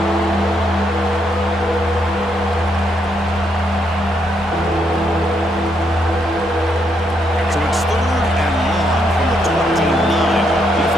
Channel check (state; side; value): normal; both; correlation 0.76